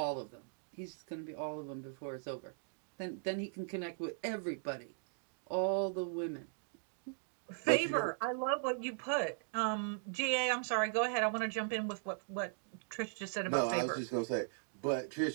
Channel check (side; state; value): left; silent; digital silence